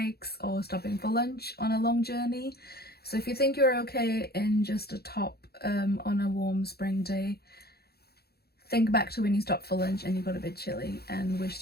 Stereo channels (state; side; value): late; right; 0.46 ms